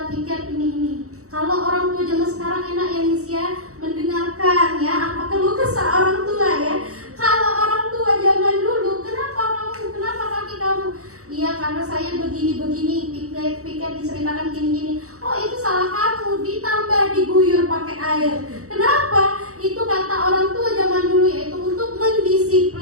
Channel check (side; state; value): left; late; 0.65 ms